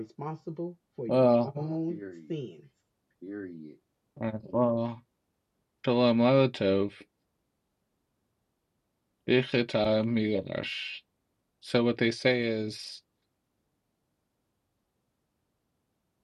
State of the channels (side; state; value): both; identical; correlation 1.00